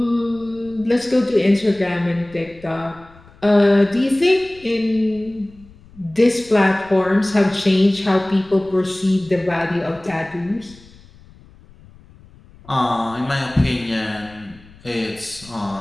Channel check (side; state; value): left; noise; rumble, 24 dB below the sound